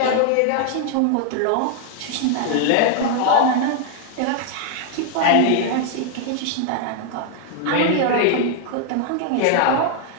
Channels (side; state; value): both; different; correlation 0.00